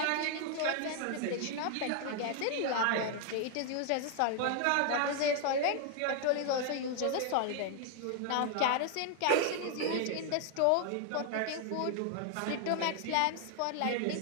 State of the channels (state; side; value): different; both; correlation 0.00